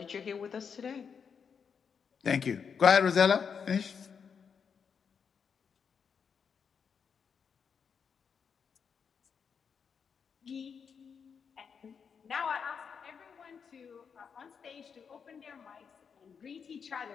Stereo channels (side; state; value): right; quieter; 6.5 dB